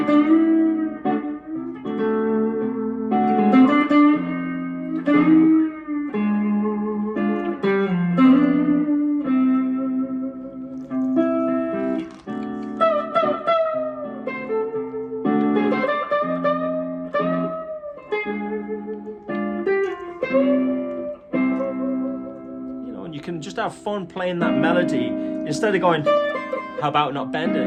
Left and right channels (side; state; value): both; identical; correlation 1.00